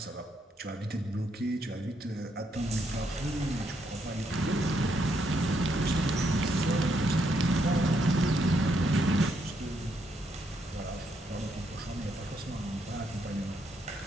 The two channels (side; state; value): both; normal; correlation 0.76